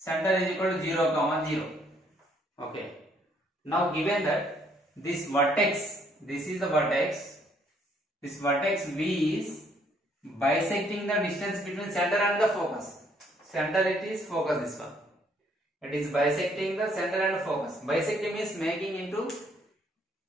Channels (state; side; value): normal; both; correlation 0.67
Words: is equal to 0 comma 0, okay. Now given that this vertex, this is the vertex, this vertex V is bisecting the distance between center and the focus. Center it is, focus this one. It is bisecting the center and focus. Bisecting means making into